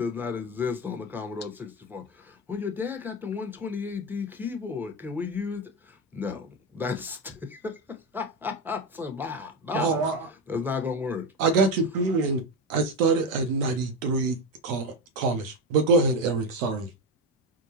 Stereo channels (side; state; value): both; normal; correlation 0.15